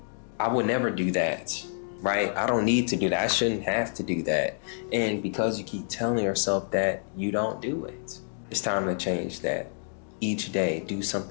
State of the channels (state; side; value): silent; right; digital silence